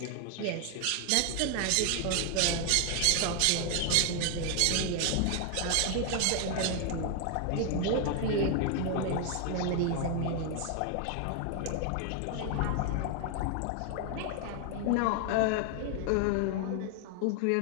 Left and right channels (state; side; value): different; both; correlation 0.01